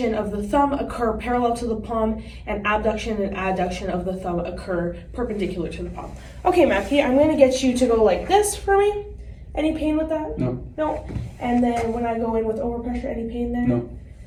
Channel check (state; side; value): identical; both; correlation 1.00